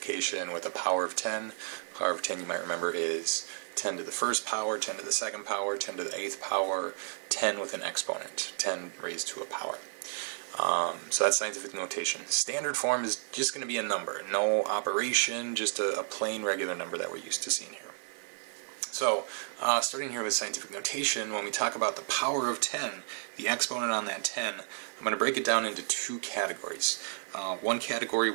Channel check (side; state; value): left; silent; digital silence